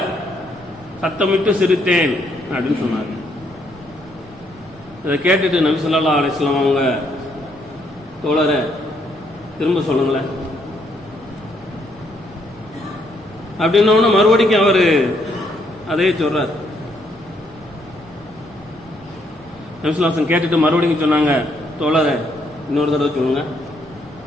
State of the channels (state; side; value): noise; right; rumble, 24 dB below the sound